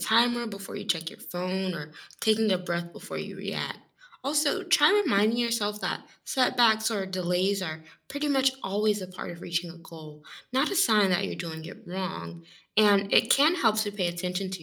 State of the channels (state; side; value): identical; both; correlation 1.00